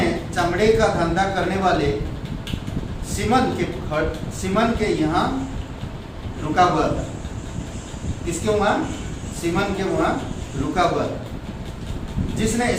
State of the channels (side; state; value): both; identical; correlation 1.00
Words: चमड़े का धंधा करने वाले सिमन के यहाँ रुका हुआ था। किसके वहाँ? सिमन के वहाँ रुका हुआ था, जिसने